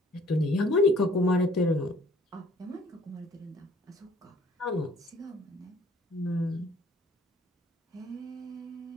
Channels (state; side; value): normal; both; correlation 0.57